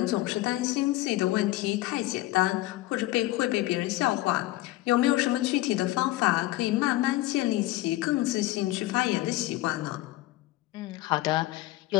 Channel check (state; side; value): quieter; right; 17.5 dB